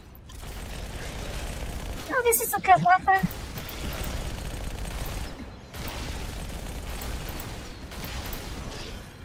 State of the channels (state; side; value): identical; both; correlation 1.00